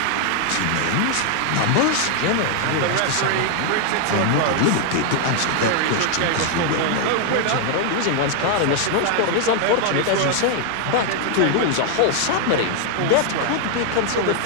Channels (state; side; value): different; both; correlation 0.00